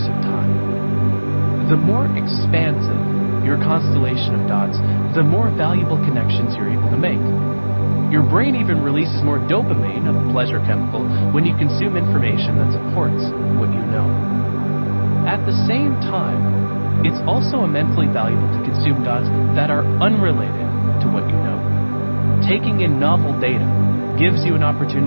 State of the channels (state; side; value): inverted; both; correlation -1.00